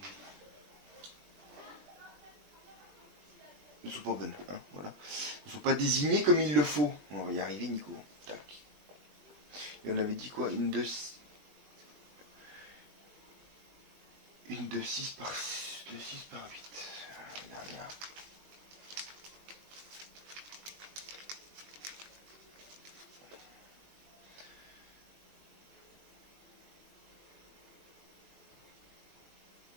bonnes, hein, voilà. Ne sont pas désignées comme il le faut. On va y arriver, Nico. Tac. Et on avait dit quoi? Une de 6 par 8. La dernière.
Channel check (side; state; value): left; late; 21 ms